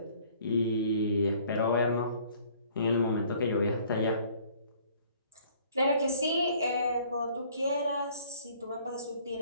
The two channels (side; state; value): both; inverted; correlation -0.57